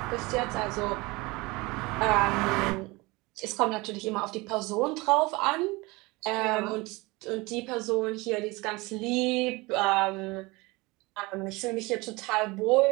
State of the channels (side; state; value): left; quieter; 23.7 dB